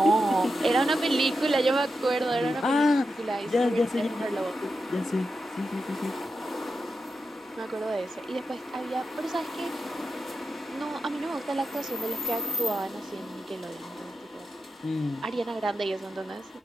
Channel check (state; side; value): normal; both; correlation 0.88